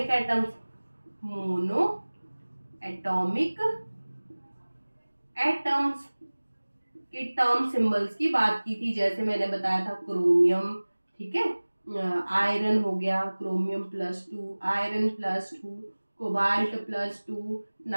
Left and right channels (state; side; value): inverted; both; correlation -1.00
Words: atoms, mono atomic atoms के टर्म सिंबल्स की बात की थी। जैसे मैंने बताया था क्रोमियम, ठीक है, आयरन हो गया, क्रोमियम +2, आयरन +2, कोबाल्ट +2,